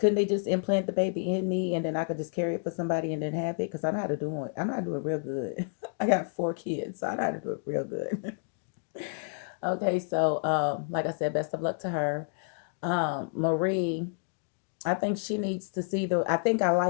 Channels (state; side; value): silent; right; digital silence